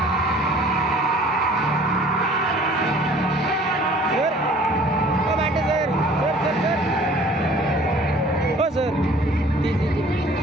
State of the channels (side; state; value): both; normal; correlation 0.52